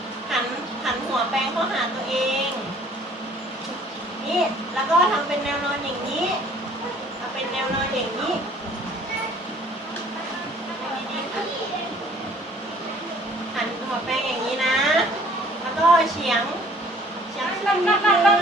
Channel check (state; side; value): normal; both; correlation 0.56